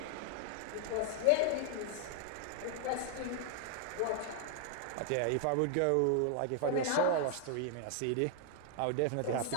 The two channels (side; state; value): both; different; correlation 0.00